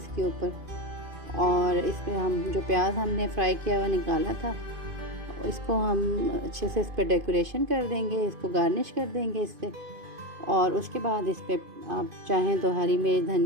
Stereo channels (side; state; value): left; late; 2.5 ms